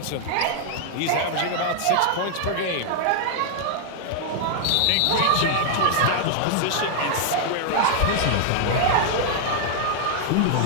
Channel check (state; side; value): different; both; correlation -0.01